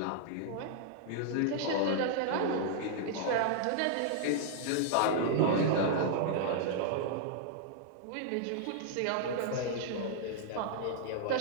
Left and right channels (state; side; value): different; both; correlation -0.01